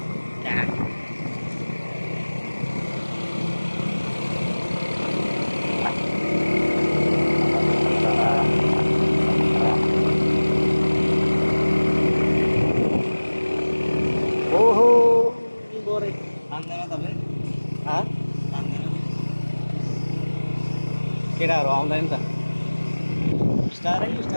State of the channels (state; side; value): inverted; both; correlation -1.00